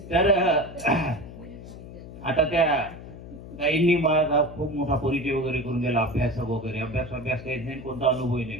तर आता त्या ताईंनी मला खूप मोठा परिचय वगैरे करून दिला, अभ्यास वगैरे, अभ्यास काहीच नाही, कोणता अनुभवही नाही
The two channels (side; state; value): left; noise; hum, 14 dB below the sound